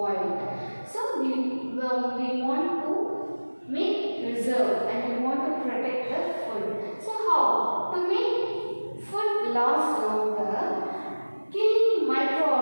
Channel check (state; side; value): inverted; both; correlation -1.00